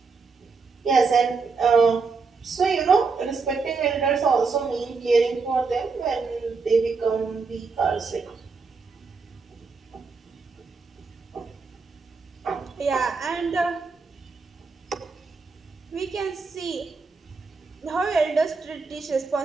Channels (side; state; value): left; quieter; 4.6 dB